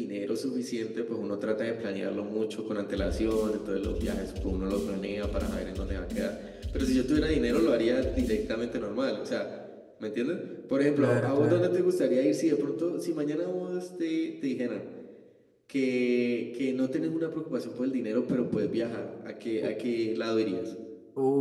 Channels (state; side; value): identical; both; correlation 1.00